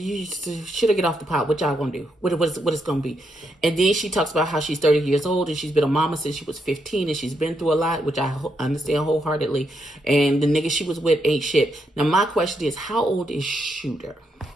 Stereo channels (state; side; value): normal; both; correlation 0.80